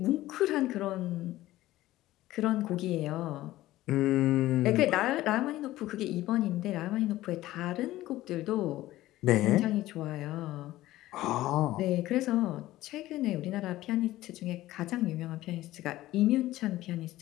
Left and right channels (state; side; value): quieter; right; 16.0 dB